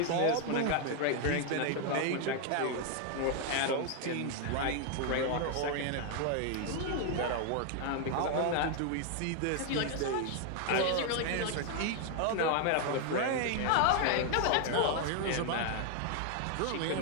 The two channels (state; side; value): different; both; correlation 0.00